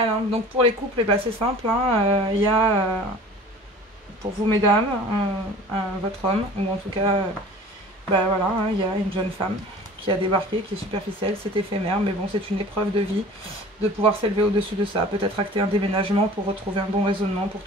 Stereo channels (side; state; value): both; normal; correlation 0.44